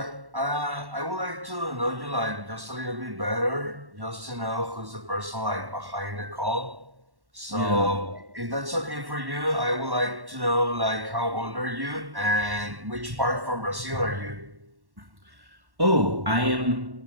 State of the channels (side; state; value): left; late; 1.1 ms